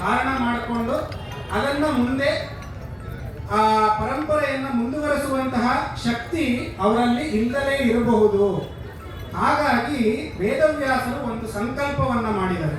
ಮಾಡಿಕೊಂಡು ಅದನ್ನ ಮುಂದೆ ಆ ಪರಂಪರೆಯನ್ನು ಮುಂದುವರೆಸುವಂತಹ ಶಕ್ತಿ ಅವರಲ್ಲಿ ಇಲ್ಲದೇ ಇರಬಹುದು. ಹಾಗಾಗಿ ವೇದವ್ಯಾಸರು ಒಂದು ಸಂಕಲ್ಪವನ್ನ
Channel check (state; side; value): identical; both; correlation 1.00